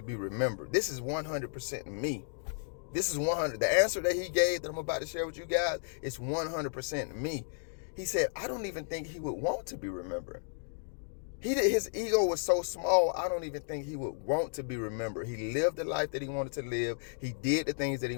be remembered? This is 100% me. This is 100. The answer that he gave that I'm about to share with you guys is 100% me. He said, I don't even think he would want to be remembered. His ego was so small, I don't even think he would want to be remembered. He lived the life that he wanted to live. He did the things that he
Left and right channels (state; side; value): silent; right; digital silence